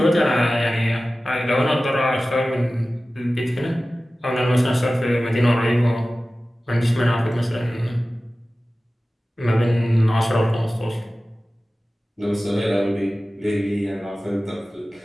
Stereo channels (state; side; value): normal; both; correlation 0.96